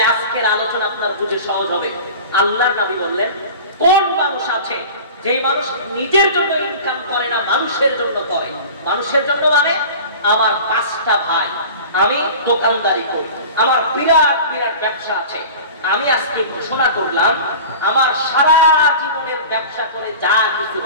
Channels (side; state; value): both; inverted; correlation -0.37